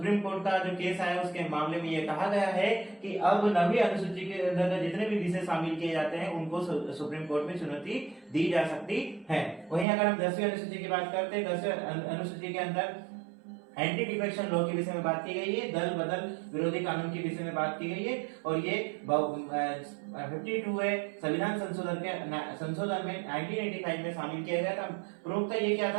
कोर्ट का जो केस आया उसके मामले में यह कहा गया है कि अब 9वीं अनुसूची के अंदर जितने भी विषय शामिल किए जाते हैं उनको सुप्रीम कोर्ट में चुनौती दी जा सकती है। वहीं अगर हम 10वीं अनुसूची की बात करते हैं, 10वीं अनुसूची के अंदर एंटी डिफेक्शन लॉ के विषय में बात की गई है, दल बदल विरोधी कानून के विषय में बात की गई है, और ये 52 है संविधान संशोधन में 1985 में शामिल किया गया था। प्रमुखता ये क्या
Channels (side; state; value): left; drops out; at 9.9 s